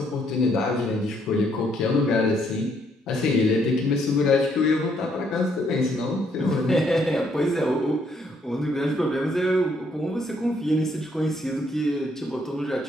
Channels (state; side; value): normal; both; correlation 0.70